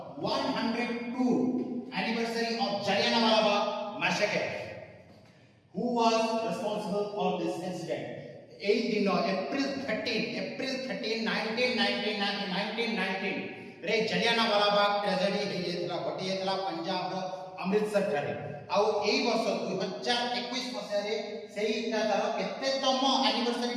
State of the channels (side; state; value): both; identical; correlation 1.00